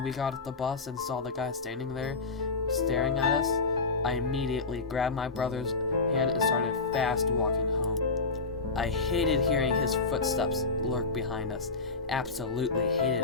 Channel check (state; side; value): quieter; right; 4.1 dB